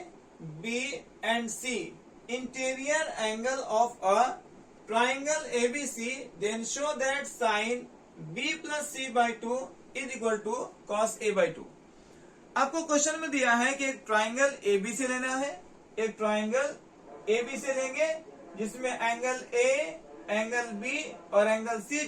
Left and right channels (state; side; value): identical; both; correlation 1.00